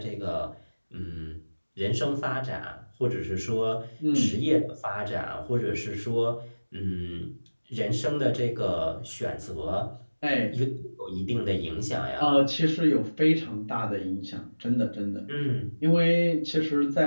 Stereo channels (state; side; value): inverted; both; correlation -1.00